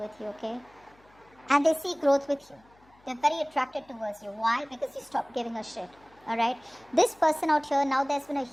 you, okay, and they see growth with you. They're very attracted towards you. Why? Because you stopped giving a shit. Alright, this person out here, now there's been a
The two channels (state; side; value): noise; left; hum, 30 dB below the sound